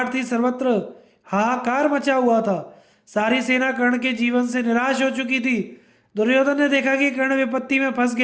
थी, सर्वत्र हाहाकार मचा हुआ था। सारी सेना कर्ण के जीवन से निराश हो चुकी थी। दुर्योधन ने देखा कि कर्ण विपत्ति में फंस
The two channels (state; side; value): identical; both; correlation 1.00